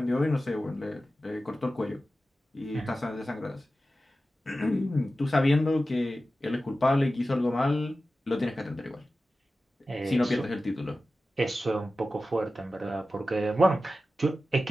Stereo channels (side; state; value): both; normal; correlation 0.93